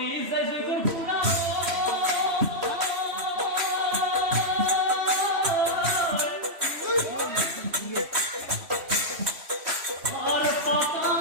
যাই জগর পুরা আর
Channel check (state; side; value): late; left; 3.0 ms